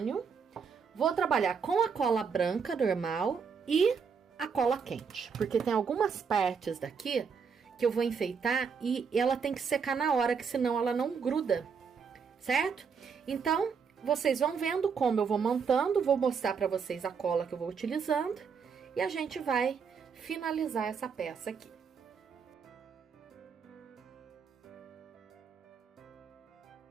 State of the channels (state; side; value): quieter; left; 6.1 dB